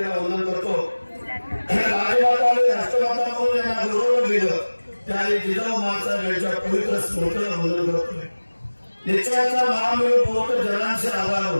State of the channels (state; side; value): inverted; both; correlation -1.00